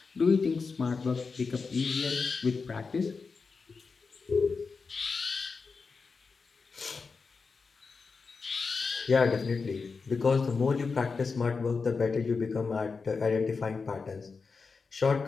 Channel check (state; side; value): quieter; right; 4.7 dB